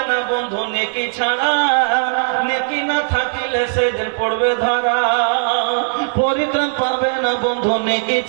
না বন্ধু নেকি ছাড়া, নেকি না থাকিলে সেদিন পড়বে ধরা। পরিত্রাণ পাবে না বন্ধু নেকি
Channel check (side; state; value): left; silent; digital silence